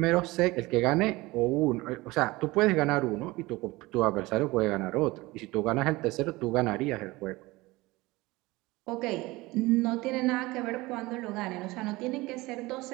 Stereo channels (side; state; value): left; quieter; 21.0 dB